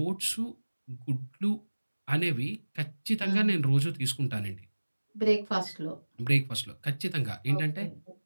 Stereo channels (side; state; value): both; inverted; correlation -1.00